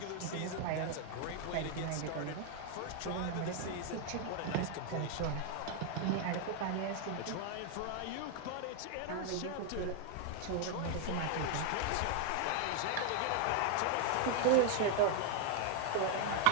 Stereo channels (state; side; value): different; both; correlation 0.00